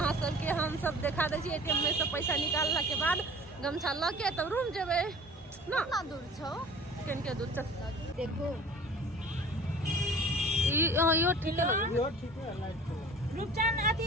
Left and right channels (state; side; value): normal; both; correlation 0.44